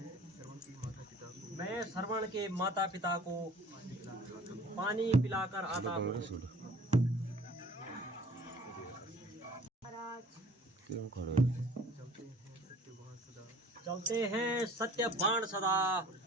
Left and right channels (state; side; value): normal; both; correlation 0.50